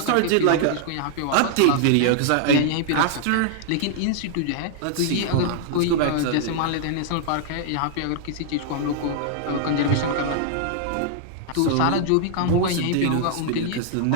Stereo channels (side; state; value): both; different; correlation -0.01